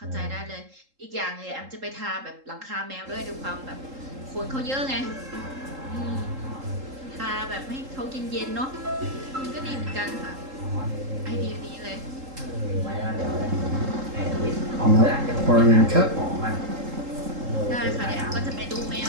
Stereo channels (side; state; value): left; late; 3.7 ms